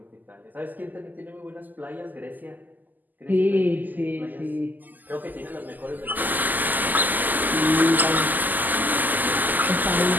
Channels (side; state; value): left; late; 0.085 ms